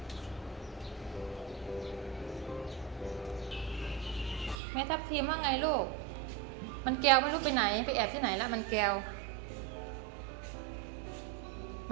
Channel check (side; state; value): left; drops out; at 4.5 s